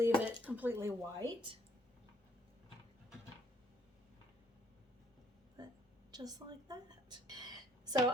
it completely white. But just like that. So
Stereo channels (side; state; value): both; normal; correlation 0.66